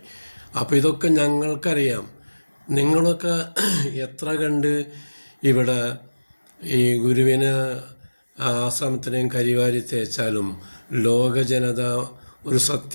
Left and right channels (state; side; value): inverted; both; correlation -1.00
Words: അപ്പോൾ ഇതൊക്കെ ഞങ്ങൾക്കറിയാം. നിങ്ങളൊക്കെ എത്ര കണ്ട് ഇവിടെ ഈ ഗുരുവിന് ആശ്രമത്തിനെയും കരിവാരി തേച്ചാലും ലോക ജനത ഒരു